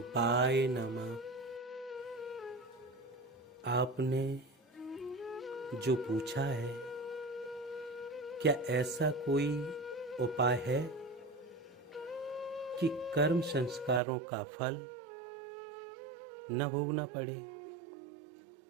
नमः। आपने जो पूछा है, क्या ऐसा कोई उपाय है कि कर्म संस्कारों का फल न भोगना पड़े?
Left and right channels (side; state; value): left; drops out; at 14.0 s